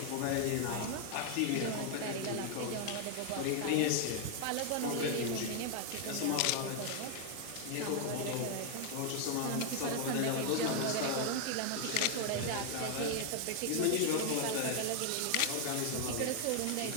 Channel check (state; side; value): different; both; correlation 0.00